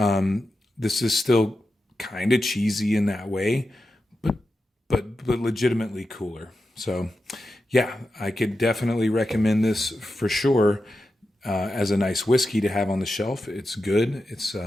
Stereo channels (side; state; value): both; normal; correlation 0.90